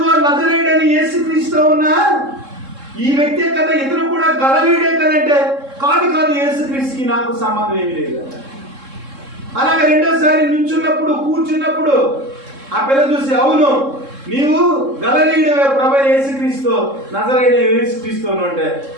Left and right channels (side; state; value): left; late; 3.7 ms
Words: నజరేయుడని యేసుక్రీస్తు ఉన్నా ఈ వ్యక్తే కదా, ఇతను కూడా గలలీయుడే కదంటే కాదు యేసుక్రీస్తుకి నాకు సంబంధం ఏమీ లేదు. అలాగే రెండోసారి నుంచున్నప్పుడు కూర్చున్నప్పుడు ఆ పిల్ల చూసి అవును నీవు గలలీయుడే ప్రభువైన యేసుక్రీస్తు నజరేయుడైన యేసుక్రీస్తు అంటే